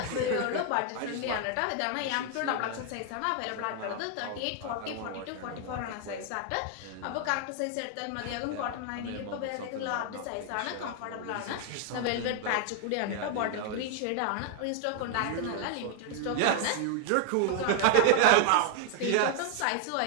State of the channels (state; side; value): different; both; correlation 0.00